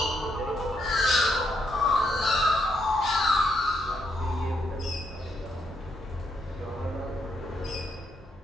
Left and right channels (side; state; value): both; normal; correlation 0.77